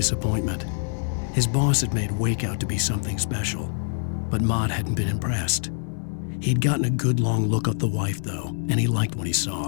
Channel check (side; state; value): right; silent; digital silence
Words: His boss had made Wake out to be something special, but Mott hadn't been impressed. He'd gotten a good long look at the wife, though, and he liked what he